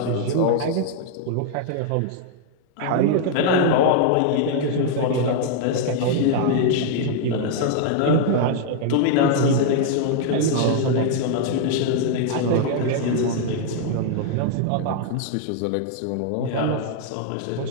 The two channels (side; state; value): both; different; correlation -0.01